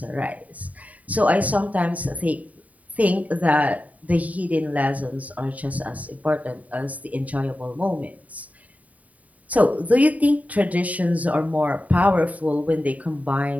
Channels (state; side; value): late; left; 0.071 ms